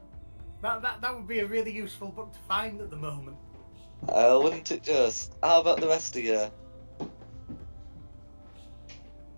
That would be a really useful book to find at the moment. Wouldn't it just? How about the rest of you?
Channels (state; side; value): inverted; both; correlation -1.00